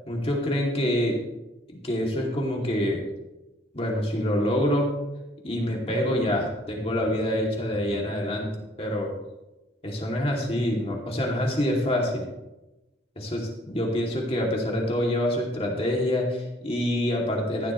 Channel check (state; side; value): normal; both; correlation 0.60